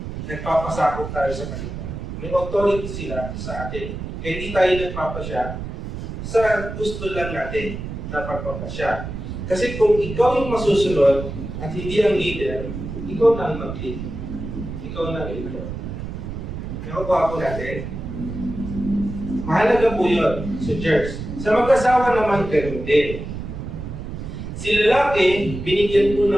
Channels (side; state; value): right; noise; rumble, 7 dB below the sound